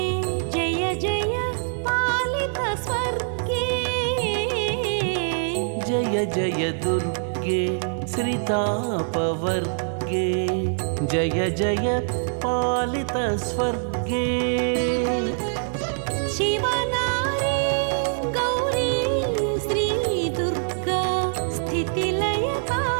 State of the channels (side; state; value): left; silent; digital silence